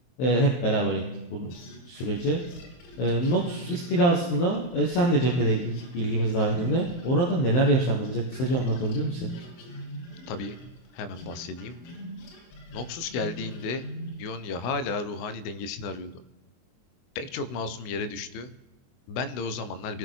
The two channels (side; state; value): right; late; 24 ms